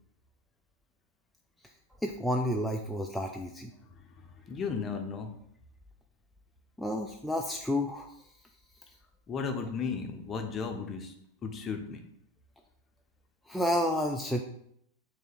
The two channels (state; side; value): normal; both; correlation 0.58